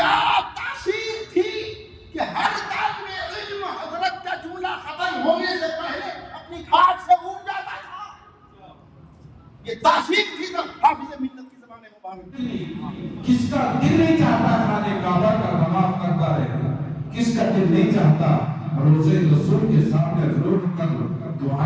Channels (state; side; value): identical; both; correlation 1.00